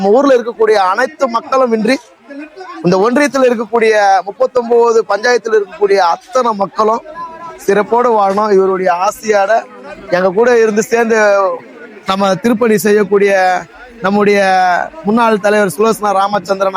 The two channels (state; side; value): identical; both; correlation 1.00